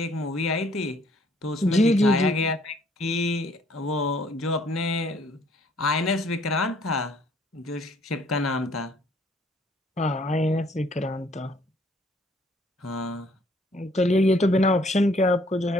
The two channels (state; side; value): normal; both; correlation 0.62